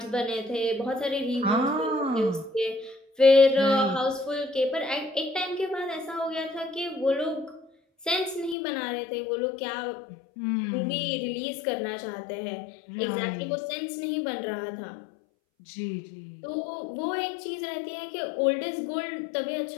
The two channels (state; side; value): drops out; right; at 8.6 s